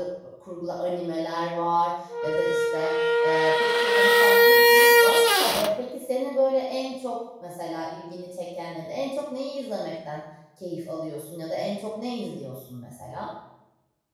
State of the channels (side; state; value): both; identical; correlation 1.00